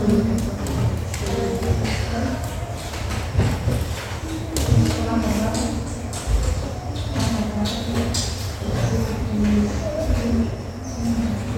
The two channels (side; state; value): both; identical; correlation 1.00